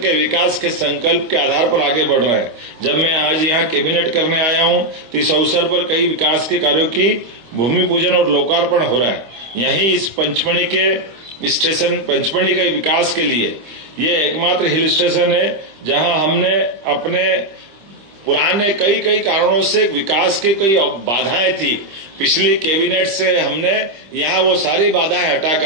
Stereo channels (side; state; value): left; late; 25 ms